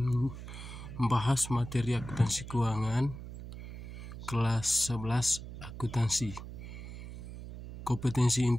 materi akuntansi keuangan kelas 11 akuntansi. Kompetensi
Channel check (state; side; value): noise; right; hum, 11 dB below the sound